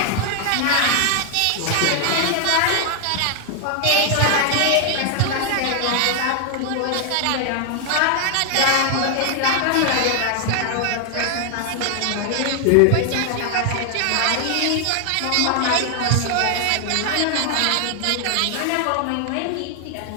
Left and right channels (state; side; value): different; both; correlation 0.00